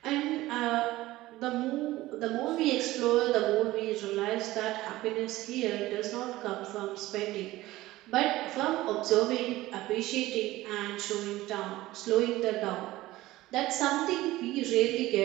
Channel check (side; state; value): left; quieter; 17.3 dB